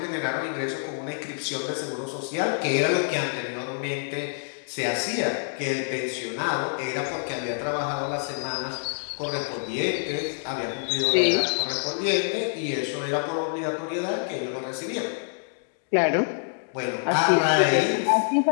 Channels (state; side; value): silent; right; digital silence